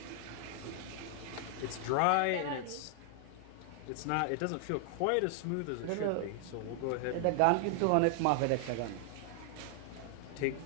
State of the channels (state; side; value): different; both; correlation 0.00